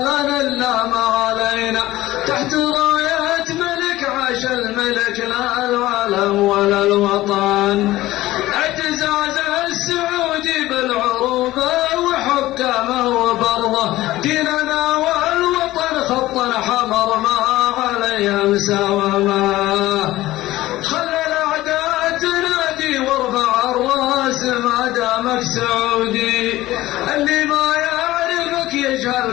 لنا الا ما علينا تحت راية ملك عاش الملك لا العالم ولا الوطن اعتزاز السعودي بالعروبة وحكامه وبرضه ديننا والوطن خطا حمر ما عليه مساومه خلى الاعداء تنادي وارفع الراس ما دامك سعودي اللي ما يعرفك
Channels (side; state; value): right; quieter; 16.6 dB